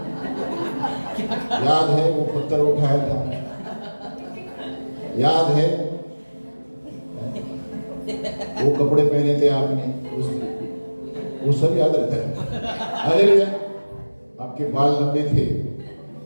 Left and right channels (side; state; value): both; inverted; correlation -1.00